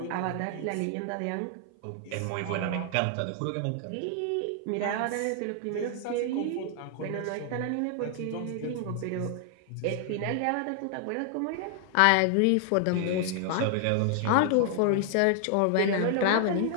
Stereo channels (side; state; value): both; different; correlation 0.00